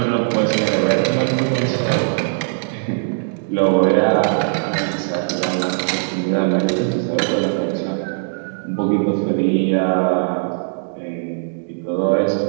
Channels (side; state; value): left; silent; 66 dB below the other